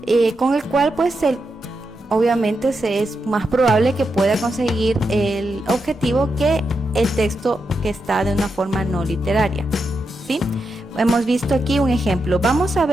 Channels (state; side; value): normal; both; correlation 0.86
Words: con el cual pues obviamente es más probable que pueda conseguir el objetivo que el texto que está de una forma no literaria. ¿Sí? Hemos visto aquí un ejemplo. Vamos a